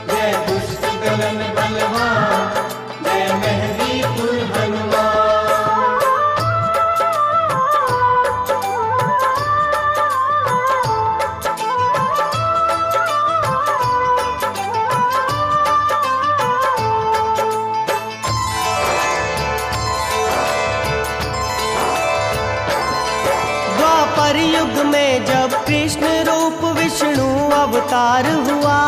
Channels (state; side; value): identical; both; correlation 1.00